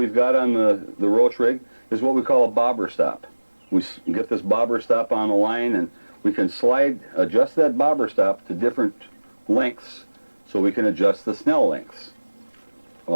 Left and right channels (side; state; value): both; inverted; correlation -1.00